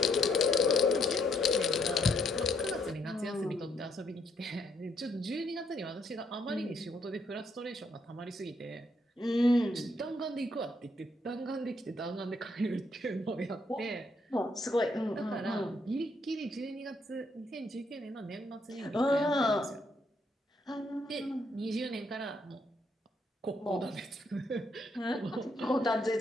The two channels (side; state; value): both; normal; correlation 0.73